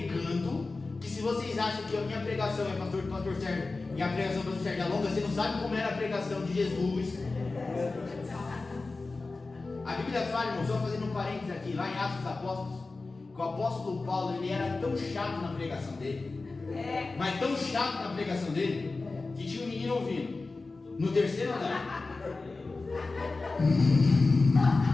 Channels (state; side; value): quieter; right; 3.6 dB